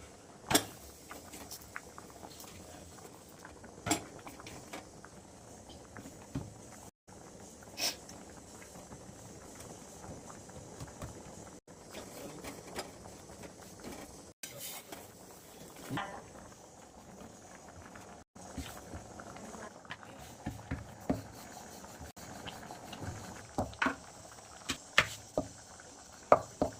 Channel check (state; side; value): identical; both; correlation 1.00